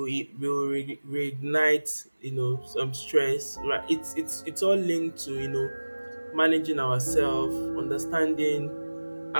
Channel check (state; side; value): inverted; both; correlation -1.00